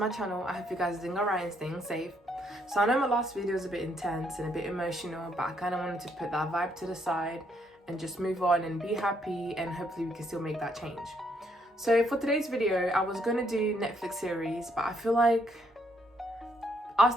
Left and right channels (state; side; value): normal; both; correlation 0.72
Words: channel. I hope you guys are doing alright and staying safe. So I know my last video was a bit intense and a bit emotional, but I kind of wanted to put that vibe to the side and just move on and be happy, and hopefully we can still make that change. So for today's video, I was going to do Netflix series, but I feel like